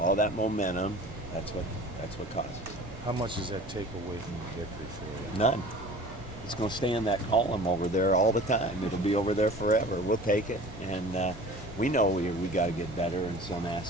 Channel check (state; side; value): normal; both; correlation 0.43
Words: that momentum. That's what caused it. How much does that take away from the victory for you? None. It's going to stay in that column over there all the time. It'll be over there forever. We'll take it, and we know we got to get better in some